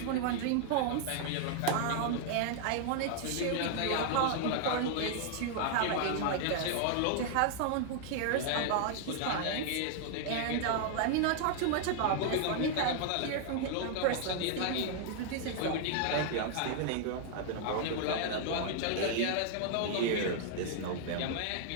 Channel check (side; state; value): both; different; correlation 0.00